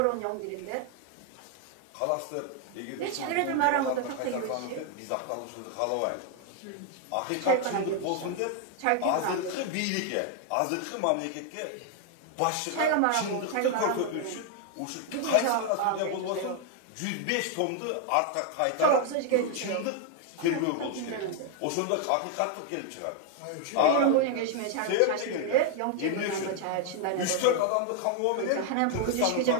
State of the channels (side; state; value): both; different; correlation 0.00